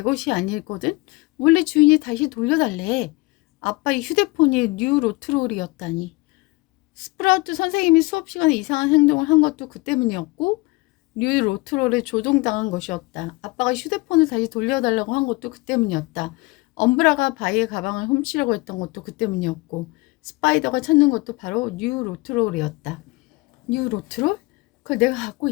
것이 아니거든. 원래 주인이 다시 돌려달래. 아빠의 휴대폰이 뉴 로트롤이었다니. 스프라우트 선생님이 수업 시간에 이상한 행동을 한 것도 그 때문이었고, 뉴 로트롤에 조종당한 것이었다. 아빠가 휴대폰을 다시 돌려달라고 한 것도 그 때문이었다. 엄브라가 바이의 가방을 훔치려고 했던 것도 그 때문이었고, 스파이더가 찾는 것도 바로 뉴 로트롤이었다. 뉴 로트롤? 그걸 내가 갖고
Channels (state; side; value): quieter; right; 23.4 dB